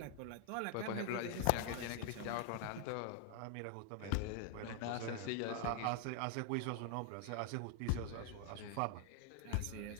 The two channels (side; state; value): both; different; correlation 0.00